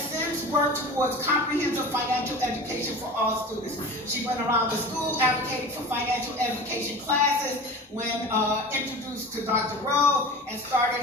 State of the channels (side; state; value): both; normal; correlation 0.35